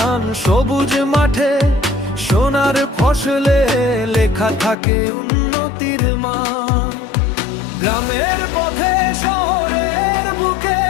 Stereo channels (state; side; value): drops out; right; at 4.8 s